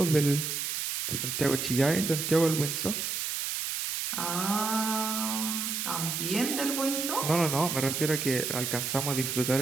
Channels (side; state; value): right; noise; hiss, 2 dB below the sound